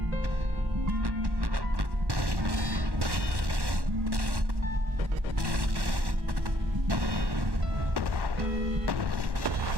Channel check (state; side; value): late; left; 1.1 ms